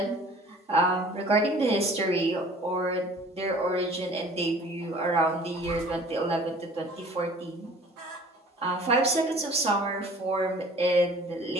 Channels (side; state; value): both; normal; correlation 0.49